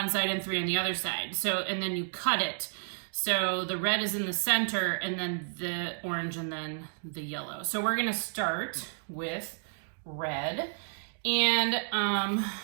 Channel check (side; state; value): left; silent; digital silence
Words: side and 3 on the other side. So, and then you cut it. So the red is in the center and then the orange and then the yellow. So we're gonna start with red, and